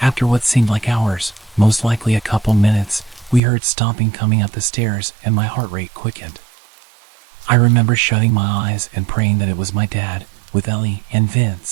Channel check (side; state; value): left; drops out; at 3.4 s